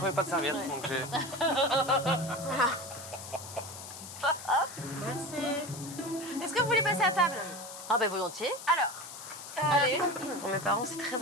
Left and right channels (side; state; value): left; noise; hiss, 12 dB below the sound